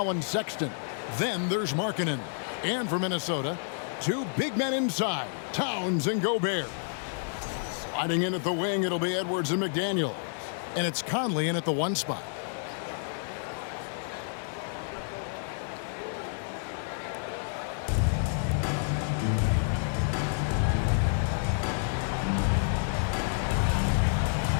Sexton. Then there's Markkanen. And for Minnesota, 2 big men inside, Towns and Gobert. Sliding in at the wing, it'll be Edwards and McDaniel. And it's Conley in at the 1 spot.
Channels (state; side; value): silent; right; 58 dB below the other